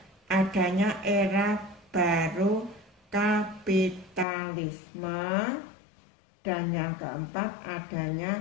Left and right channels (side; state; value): right; drops out; at 4.2 s